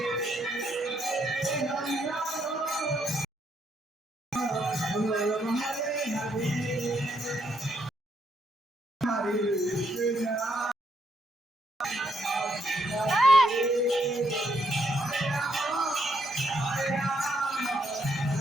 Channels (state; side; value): normal; both; correlation 0.74